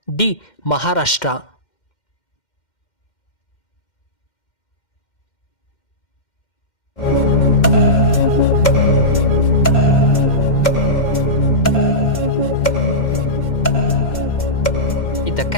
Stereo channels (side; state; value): right; late; 2.1 ms